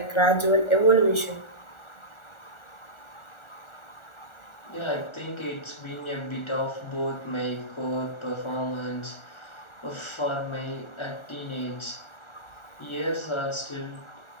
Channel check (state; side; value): late; right; 1.4 ms